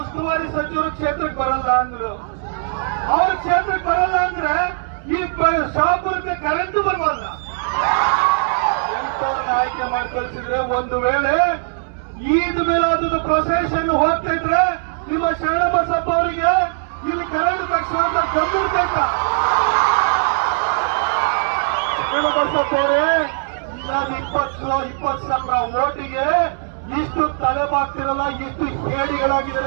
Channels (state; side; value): silent; left; 66 dB below the other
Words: ಉಸ್ತುವಾರಿ ಸಚಿವರು ಕ್ಷೇತ್ರಕ್ಕೆ ಬರಲ್ಲ ಅಂದ್ರು. ಅವ್ರ ಕ್ಷೇತ್ರಕ್ಕೆ ಬರಲ್ಲ ಅಂದ್ರೆ ಈ ಶಾಪುರಕ್ಕೆ ಕರೆಂಟ್ ಬರಬಲ್ಲ. ಎಂತವ್ರನ್ನ ಆಯ್ಕೆ ಮಾಡಿ ಕಳಿಸಿದ್ರೆ ಒಂದು ವೇಳೆ ಈದ್ ಮಿಲಾದ್ ಪ್ರೊಸೆಷನ್ ಹೋಗ್ತಾ ಇದ್ರೆ ನಿಮ್ಮ ಶರಣಬಸಪ್ಪ ಅವರಿಗೆ ಇಲ್ಲಿ ಕರೆಂಟ್ ತಕ್ಷಣ ಗಂಭೀರ್ಬೇಕ. ಶರಣಬಸಪ್ಪ ಅವರೇ, ನಾನು 20 ಸಾವಿರ ಓಟಿಗೆ ಇಷ್ಟು ತಲೆಬಾಗ್ತಿರಲ್ಲ, ಇಷ್ಟು